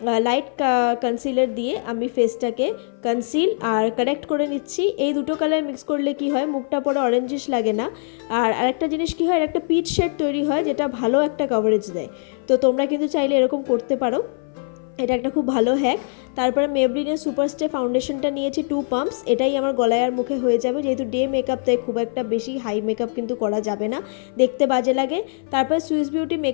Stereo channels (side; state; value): right; silent; 57 dB below the other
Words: লাইট কনসিলার দিয়ে আমি ফেসটাকে কনসিল আর কারেক্ট করে নিচ্ছি। এই দুটো কালার মিক্স করলে কি হয়, মুখটা পরে অরেঞ্জিশ লাগে না। আর আরেকটা জিনিস কি হয়, একটা পিচ শেড তৈরি হয় যেটা ভালো একটা কভারেজ দেয়। তো তোমরা কিন্তু চাইলে এরকম করতে পারো, এটা একটা খুব ভালো হ্যাক। তারপরে মেবলিনের সুপারস্টে ফাউন্ডেশনটা নিয়েছি 2 পাম্পস, এটাই আমার গলায় আর মুখে হয়ে যাবে, যেহেতু ডে মেকআপ তাই খুব একটা বেশি হাই মেকআপ কিন্তু করা যাবে না, দেখতে বাজে লাগে। তারপরে সুইস বিউটি